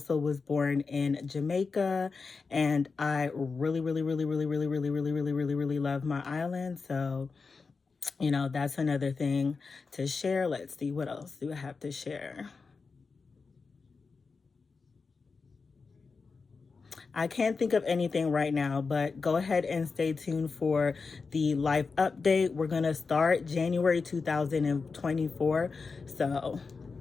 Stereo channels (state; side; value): quieter; right; 4.7 dB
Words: was born in Jamaica, and I really love my island. So, you know, that's another thing to share. Let's see, what else do I have to share? I can't think of anything right now, but go ahead and stay tuned for the life update. We're going to start January 2024. So